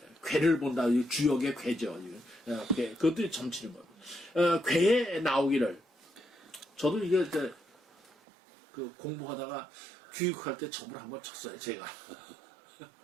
괴를 본다. 주역의 괴죠. 그것도 점치는 거예요. 괴에 나오기를 저도 이게 공부하다가 교육할 때 점을 한번 쳤어요. 제가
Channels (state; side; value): drops out; left; at 8.1 s